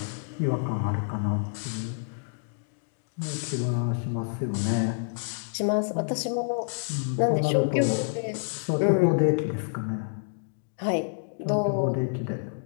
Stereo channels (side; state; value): right; silent; digital silence